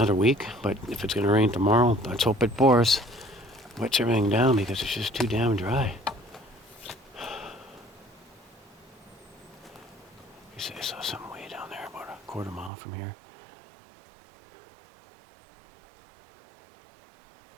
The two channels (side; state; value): left; drops out; at 12.7 s